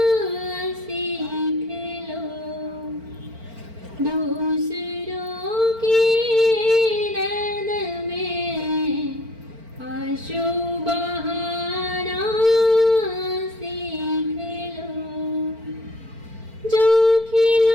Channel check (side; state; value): left; late; 4.4 ms